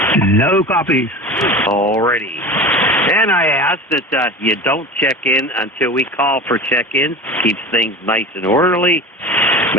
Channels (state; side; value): normal; both; correlation 0.32